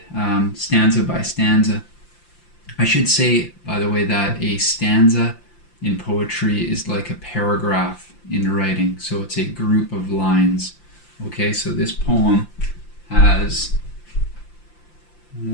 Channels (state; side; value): late; right; 5.8 ms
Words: stanza by stanza. I should say, by the way, that a stanza in poetry is like a paragraph in writing, so it's a group of lines. Okay, so this poem has